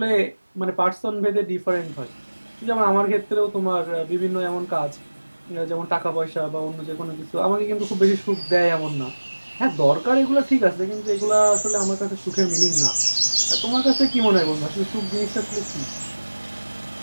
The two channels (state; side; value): inverted; both; correlation -1.00